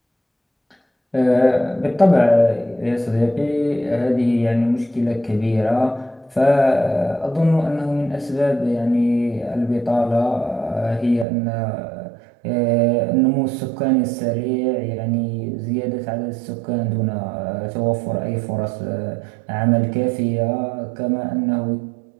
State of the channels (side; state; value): left; drops out; at 11.2 s